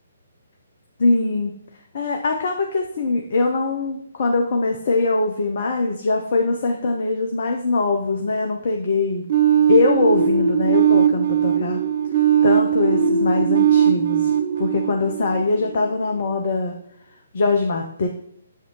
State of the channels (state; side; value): inverted; both; correlation -0.67